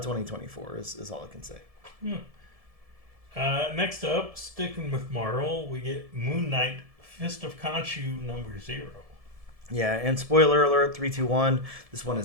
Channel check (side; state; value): left; late; 1.7 ms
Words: 2024 is all I can say. Next up, sticking with Marvel, we get Moon Knight Fist of Khonshu #0. Yeah, and spoiler alert, 321, this one